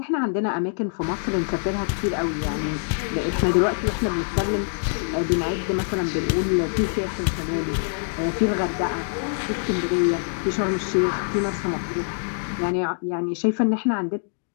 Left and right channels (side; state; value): right; silent; digital silence